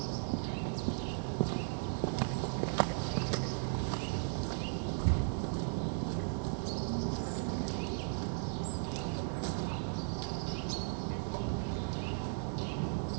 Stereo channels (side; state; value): left; silent; digital silence